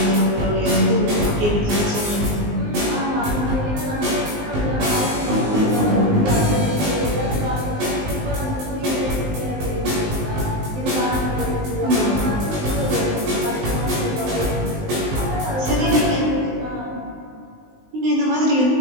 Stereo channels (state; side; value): late; left; 19 ms